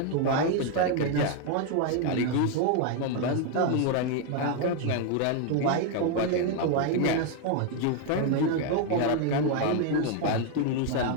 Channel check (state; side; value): different; both; correlation 0.01